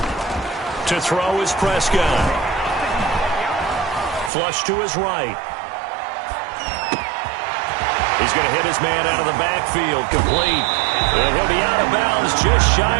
To throw is Prescott. Flush to his right. He's going to hit his man out of the backfield, complete. And he'll be out of bounds just shy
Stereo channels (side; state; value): left; drops out; at 4.3 s